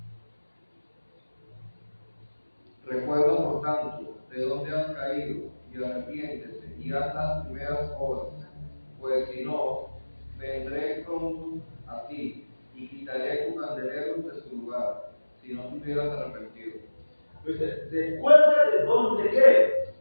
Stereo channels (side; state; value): both; inverted; correlation -1.00